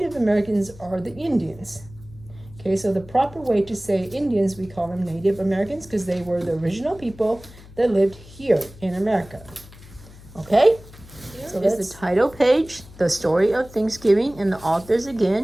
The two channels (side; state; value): left; noise; hum, 20 dB below the sound